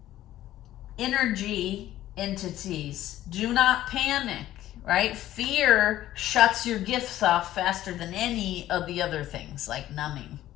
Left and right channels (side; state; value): right; quieter; 13.7 dB